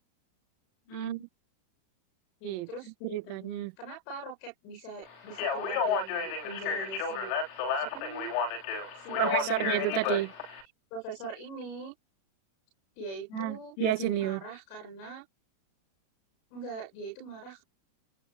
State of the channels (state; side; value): late; right; 37 ms